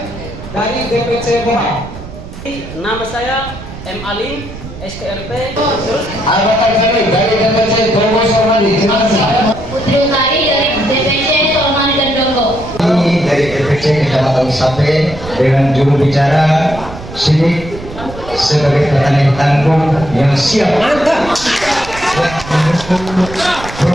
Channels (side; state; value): right; noise; rumble, 13 dB below the sound